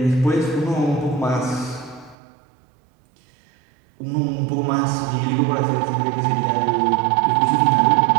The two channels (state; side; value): drops out; left; at 2.1 s